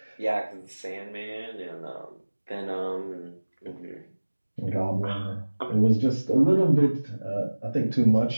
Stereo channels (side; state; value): both; inverted; correlation -1.00